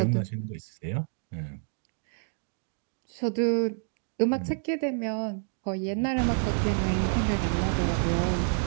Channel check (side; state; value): left; silent; 59 dB below the other